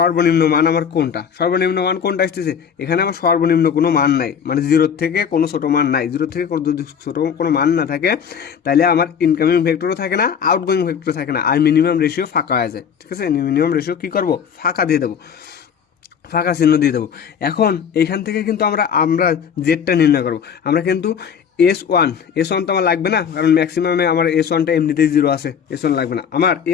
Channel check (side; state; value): right; quieter; 7.5 dB